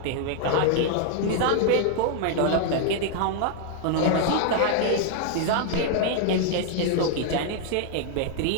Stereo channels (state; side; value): different; both; correlation 0.00